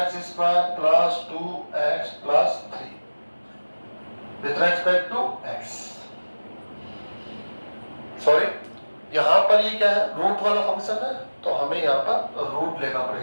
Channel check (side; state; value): both; inverted; correlation -1.00